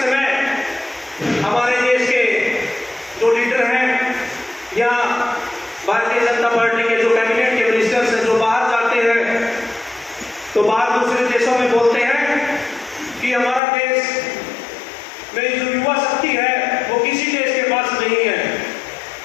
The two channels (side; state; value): right; drops out; at 13.6 s